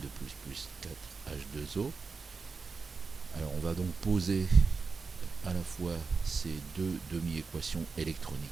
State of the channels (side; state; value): left; quieter; 4.7 dB